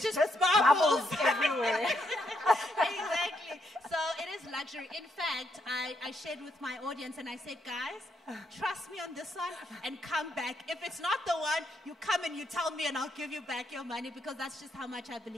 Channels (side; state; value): both; normal; correlation 0.77